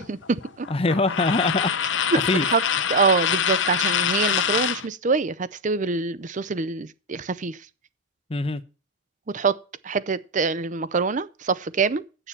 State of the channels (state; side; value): normal; both; correlation 0.09